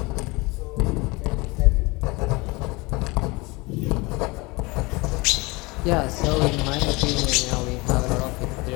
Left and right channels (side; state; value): right; quieter; 24.6 dB